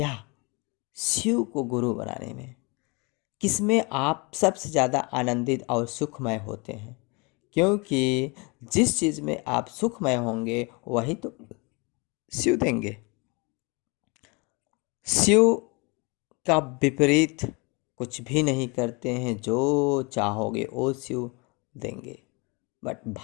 शिव को गुरु बनाने में? किसमें आप सबसे ज़्यादा आनंदित और सुखमय होते हैं? क्योंकि जिस चीज़ में आप सुखमय होंगे वही तो शिव देंगे। शिव का विपरीत कुछ भी नहीं करते हैं। जो चाहोगे वो शिव देंगे। बट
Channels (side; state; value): right; quieter; 29.3 dB